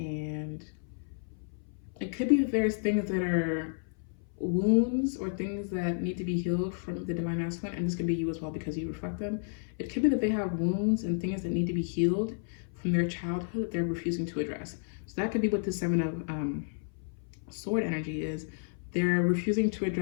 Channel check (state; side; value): silent; right; 56 dB below the other